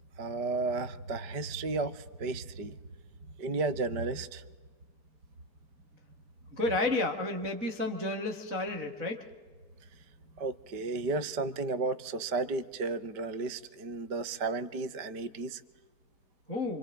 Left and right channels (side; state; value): left; late; 5.0 ms